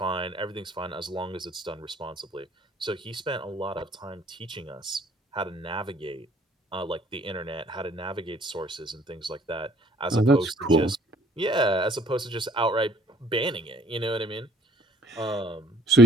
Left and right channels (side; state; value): both; normal; correlation 0.59